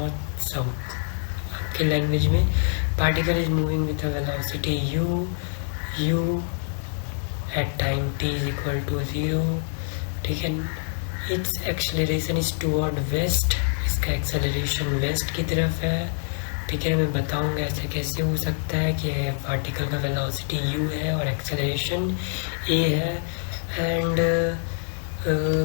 साउथ। आपके लैंग्वेज में particle is moving with a velocity U at time t is equal to 0। ठीक है। Its acceleration is toward west, इसका एक्सेलरेशन वेस्ट की तरफ है। ठीक है, मैं बताऊंगा ऐसे कैसे हो सकता है कि पार्टिकल का वेलोसिटी u है और एक्सेलरेशन a है। एंड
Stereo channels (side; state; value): right; silent; digital silence